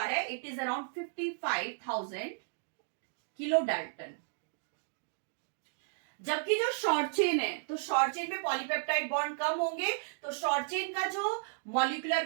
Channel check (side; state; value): left; silent; digital silence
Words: है, it is around 55,000 kilo dalton. जबकि जो शॉर्ट चेन है, तो शॉर्ट चेन में पॉलीपेप्टाइड बॉन्ड कम होंगे, तो शॉर्ट चेन का जो मॉलिक्यूलर